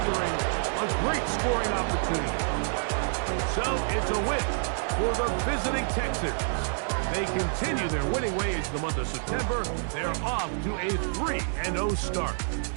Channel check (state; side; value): silent; left; 59 dB below the other